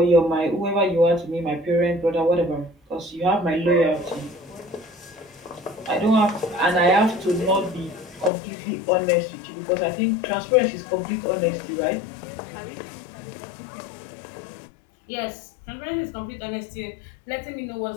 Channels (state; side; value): drops out; right; at 8.3 s